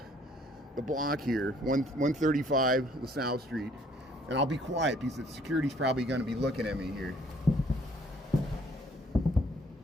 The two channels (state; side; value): normal; both; correlation 0.61